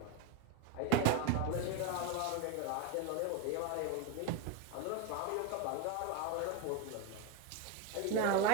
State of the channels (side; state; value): both; different; correlation 0.02